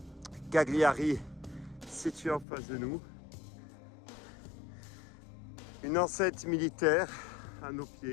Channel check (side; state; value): right; drops out; at 2.5 s